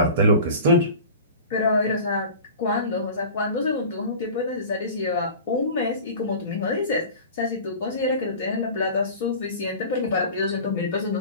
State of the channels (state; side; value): inverted; both; correlation -0.38